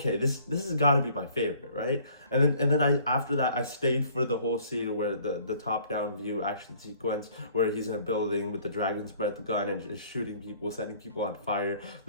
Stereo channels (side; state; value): both; inverted; correlation -0.56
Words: this has got to be my favorite, right? And then I after that, I stayed for the whole scene where the top down view action sequence where he's in a building with the dragon's breath gun and just shooting people, setting people on fire.